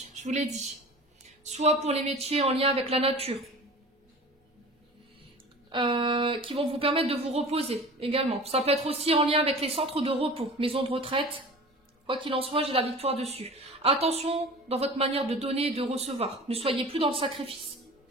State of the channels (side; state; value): both; normal; correlation 0.39